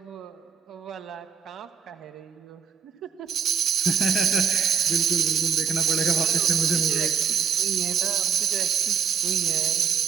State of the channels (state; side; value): quieter; left; 7.0 dB